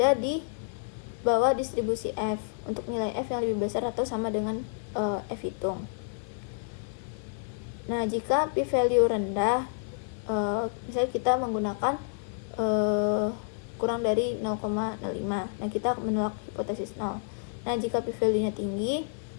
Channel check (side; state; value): right; silent; 58 dB below the other